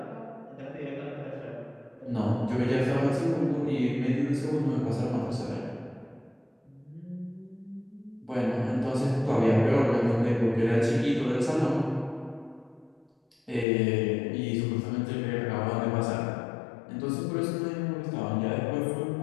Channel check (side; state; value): right; drops out; at 13.7 s